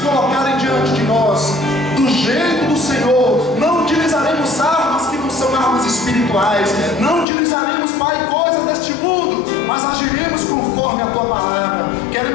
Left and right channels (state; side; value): drops out; right; at 7.2 s